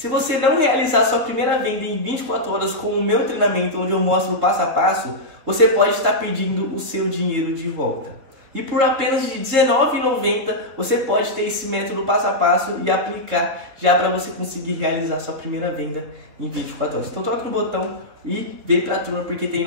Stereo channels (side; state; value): left; late; 4.1 ms